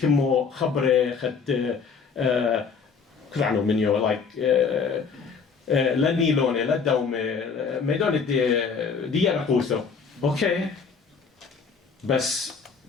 خبرة خد كلعنو منيو like لا نيلوني لا دومي ميدون دي رقوسو اوكي بس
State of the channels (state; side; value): quieter; right; 5.6 dB